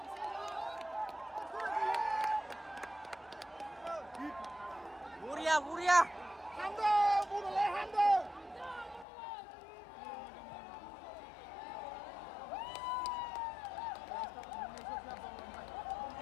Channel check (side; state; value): right; drops out; at 9.1 s